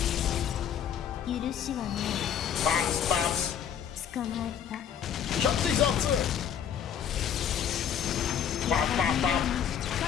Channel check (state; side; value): quieter; right; 8.7 dB